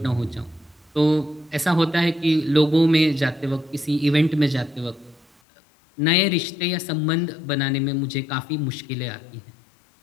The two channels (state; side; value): drops out; right; at 5.2 s